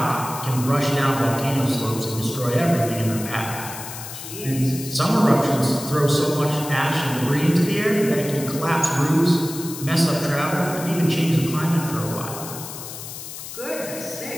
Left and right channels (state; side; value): noise; left; hiss, 10 dB below the sound